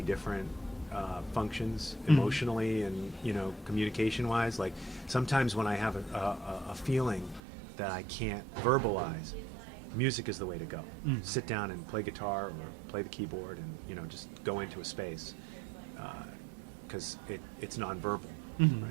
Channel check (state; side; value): drops out; left; at 7.4 s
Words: different functions emotionally and communication wise. Like sometimes when I have a feeling that I can't verbalize, music is the way to go. Sit down and play guitar or play the keyboard and just go into a space, because it's nonverbal,